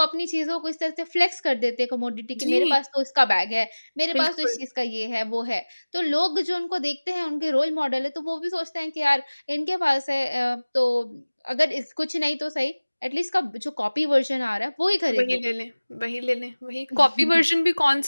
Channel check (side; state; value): both; inverted; correlation -1.00